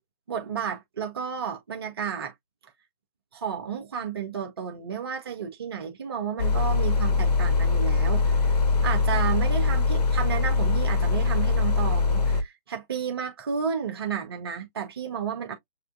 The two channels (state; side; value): inverted; both; correlation -0.49